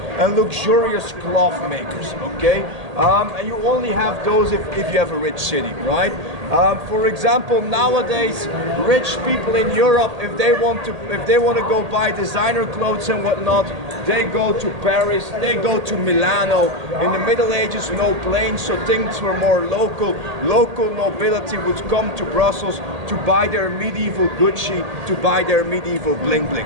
and luxurious cloth makers, okay? And you only have those if you have a rich city, right? For example, nowadays, rich people in Europe, if they want to go buy designer clothes and whatnot, they go to Paris, they go to Milano. In the Middle Ages, no planes, so things were more local. Local nobility would come to Brussels to buy their medieval Gucci, to buy their medieval bling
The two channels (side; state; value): left; late; 1.8 ms